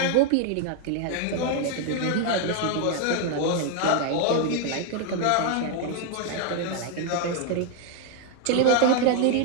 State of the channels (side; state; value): both; different; correlation 0.00